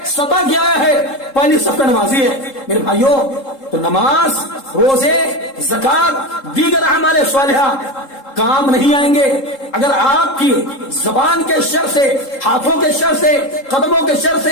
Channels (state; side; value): late; right; 3.7 ms